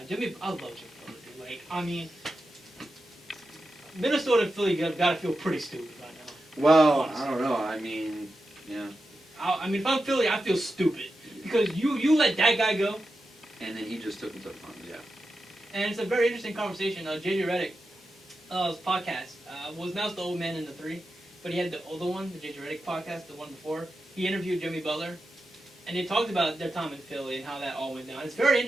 love Jimmy Butler, dude. Like, I mean, Minnesota and Philly gotta feel pretty stupid right now. Well, honestly. I don't know. I mean, yeah. I mean, if I'm Philly, I feel stupid. Because you let that guy go. And then he just took him to the finals, yeah. And it's a very interesting conversation. JJ Redick's podcast was announced the old man in the 3, but he had the older one, the JJ Redick podcast, the one before. He interviewed Jimmy Butler, and they talked about their time in Philly and how that all went down. It's very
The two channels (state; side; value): normal; both; correlation 0.90